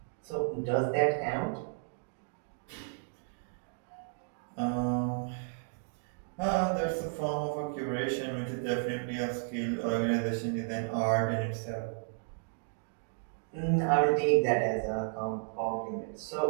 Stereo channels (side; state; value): left; silent; digital silence